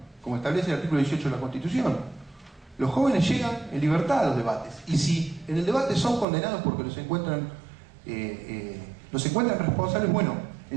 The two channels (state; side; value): drops out; left; at 6.2 s